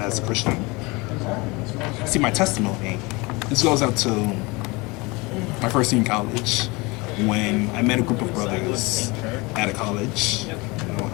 as a Christian. See, my testimony, this goes out to my first year in college, when I met a group of brothers at a college.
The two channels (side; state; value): right; quieter; 25.3 dB